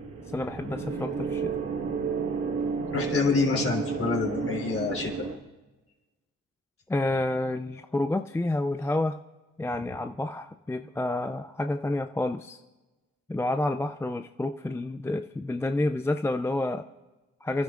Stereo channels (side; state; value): both; normal; correlation 0.71